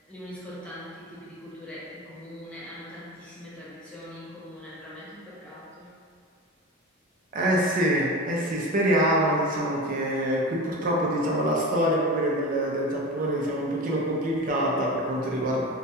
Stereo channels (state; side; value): normal; both; correlation 0.29